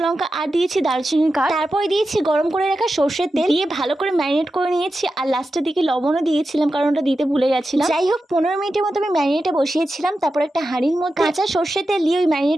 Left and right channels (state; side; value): normal; both; correlation 0.91